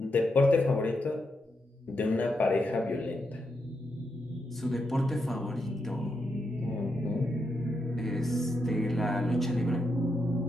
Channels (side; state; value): both; normal; correlation 0.83